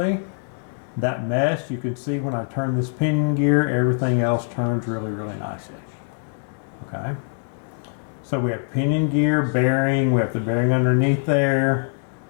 That mesh, you can see when I turn this pinion gear, everything else turns really, really nicely. Okay. So we have pinion gear, bearing, we have the bearing underneath there.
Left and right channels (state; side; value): silent; right; 63 dB below the other